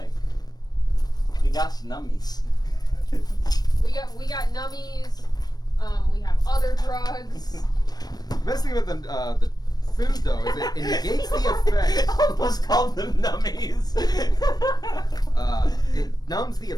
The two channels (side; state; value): right; late; 0.19 ms